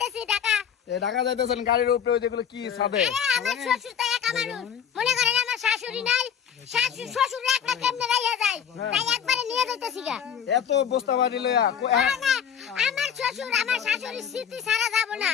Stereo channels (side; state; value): right; quieter; 8.1 dB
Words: ঢাকা। ঢাকা যাইতেছেন গাড়ির উপরে ওই যেগুলো কি ছাদে? আমার শ্বশুর তো একা মানুষ, মনে করেন আমার শাশুড়ি নাই, শাশুড়ি শ্বশুর একটা কেমনে রাইয়া যায়, তাই একবারে নিয়ে যাইতেছি গা। এত বস্তা বাড়ি লইয়া না, আমার শ্বশুর আমার শাশুড়ির স্মৃতি ছাড়া যাব না।